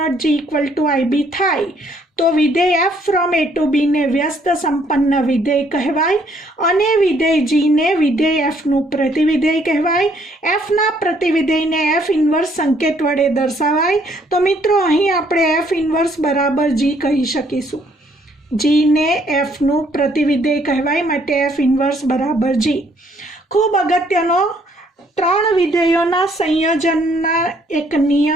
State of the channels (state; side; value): normal; both; correlation 0.66